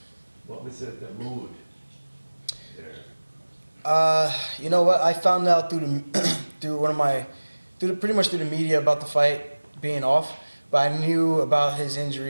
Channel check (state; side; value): inverted; both; correlation -1.00